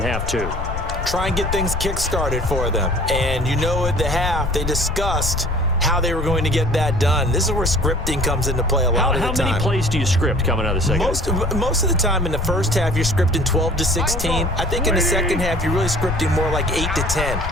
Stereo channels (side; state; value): left; noise; rumble, 4 dB below the sound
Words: half 2. Try and get things kick-started for them. And you know at the half, they discussed how they were going to get that done. This is where scripting comes into play a lot of the time. How many plays do you script coming out of the second half? Most of the time in the first half, you're scripting 12 to 16. I think in the second half, you're really scripting more like 8 to 10.